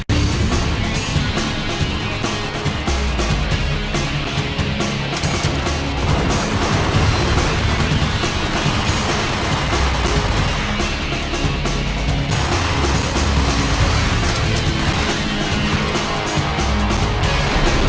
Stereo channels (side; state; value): both; identical; correlation 1.00